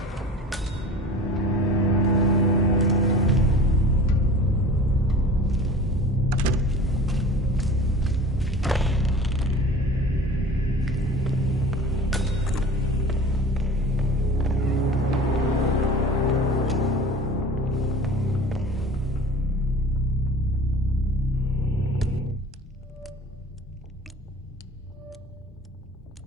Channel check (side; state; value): both; normal; correlation 0.40